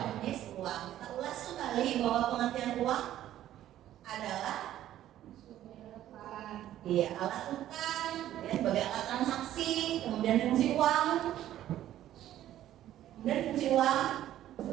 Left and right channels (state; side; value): quieter; left; 12.6 dB